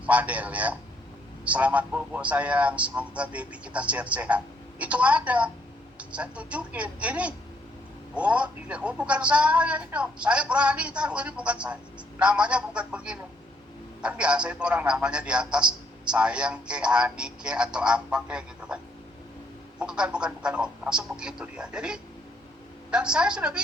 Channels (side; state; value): both; normal; correlation 0.70